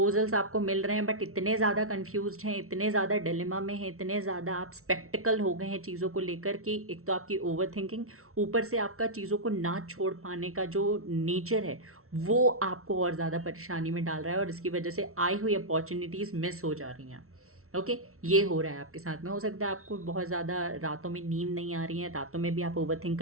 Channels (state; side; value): late; left; 0.63 ms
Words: आपको मिल रहे हैं, बट इतने ज़्यादा कंफ्यूज्ड हैं, इतने ज़्यादा डिलेमा में हैं, इतने ज़्यादा आप स्पेक्टिकल हो गए हैं चीज़ों को लेकर कि एक तो आपकी ओवर थिंकिंग, ऊपर से आपका चीज़ों को ना छोड़ पाने का जो नेचर है वो आपको और ज़्यादा परेशानी में डाल रहा है, और इसकी वजह से आई हुई अपॉर्चुनिटीज़ मिस हो जा रही हैं। ओके, ये हो रहा है आपके साथ में। हो सकता है आपको बहुत ज़्यादा रातों में नींद नहीं आ रही है, रातों में भी आप ओवरथिंक